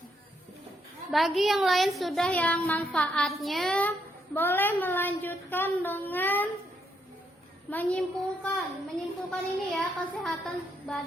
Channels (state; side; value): normal; both; correlation 0.76